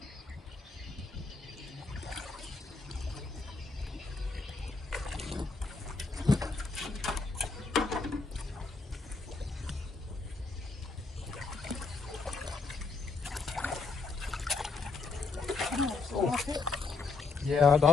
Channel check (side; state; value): right; quieter; 4.1 dB